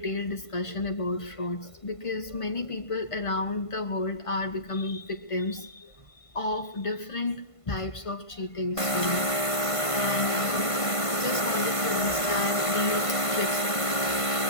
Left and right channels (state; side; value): late; right; 1.5 ms